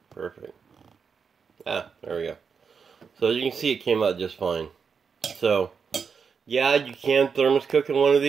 Perfect. Ah, there we go. So as you can see, it came out just fine. So, yeah, you can thermos cook in one of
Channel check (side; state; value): left; quieter; 6.0 dB